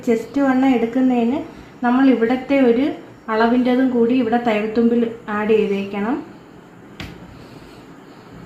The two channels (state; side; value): identical; both; correlation 1.00